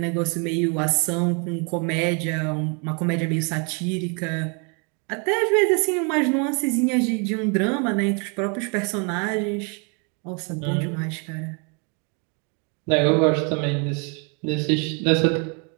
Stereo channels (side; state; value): left; quieter; 35.2 dB